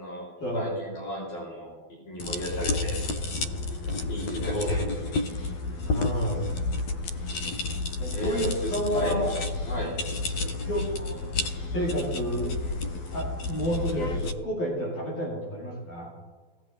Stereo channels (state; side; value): late; right; 12 ms